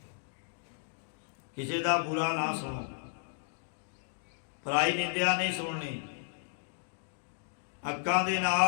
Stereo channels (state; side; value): silent; right; digital silence